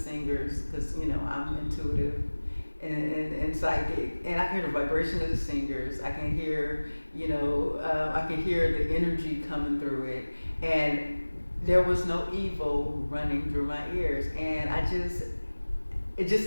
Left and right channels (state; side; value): inverted; both; correlation -1.00